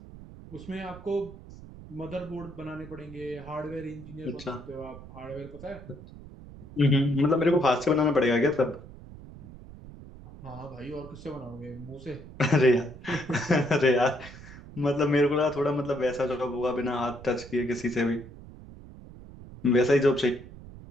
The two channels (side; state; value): right; noise; rumble, 16 dB below the sound